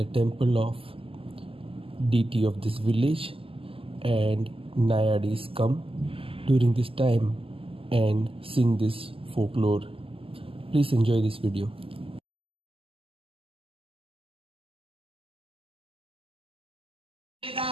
temple of deity of this village, and Nayadis come during this time and sing this folklore. Please enjoy this video.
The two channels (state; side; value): late; left; 0.26 ms